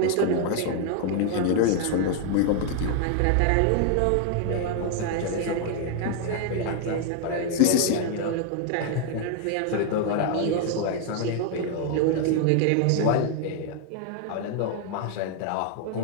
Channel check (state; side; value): different; both; correlation 0.00